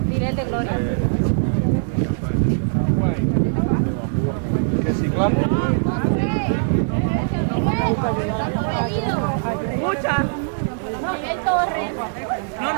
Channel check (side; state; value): left; silent; 60 dB below the other